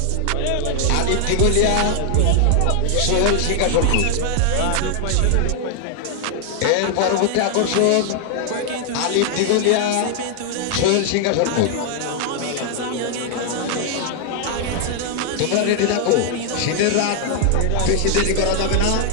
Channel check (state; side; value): different; both; correlation 0.00